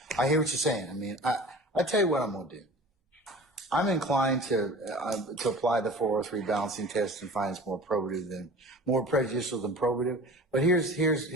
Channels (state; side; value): normal; both; correlation 0.41